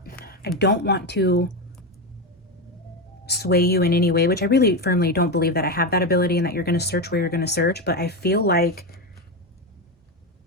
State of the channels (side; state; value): both; normal; correlation 0.13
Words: don't want to sway you in any way, which I really firmly don't believe that I have that ability and that you're going to search where you're going to search, but I feel like